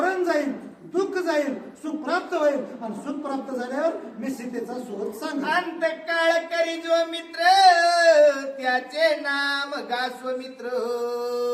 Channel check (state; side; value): identical; both; correlation 1.00